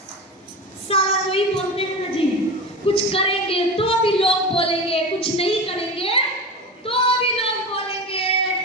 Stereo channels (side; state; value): both; normal; correlation 0.27